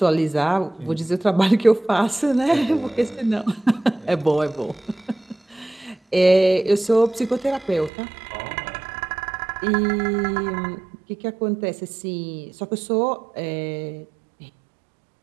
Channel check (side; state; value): left; drops out; at 7.9 s